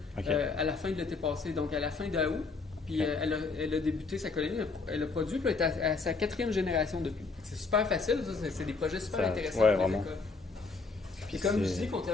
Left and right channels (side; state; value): right; quieter; 4.2 dB